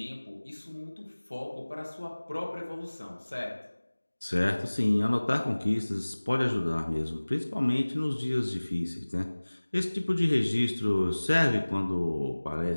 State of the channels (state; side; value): inverted; both; correlation -1.00